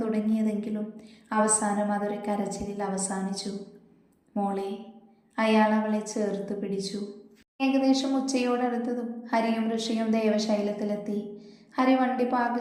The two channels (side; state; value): both; identical; correlation 1.00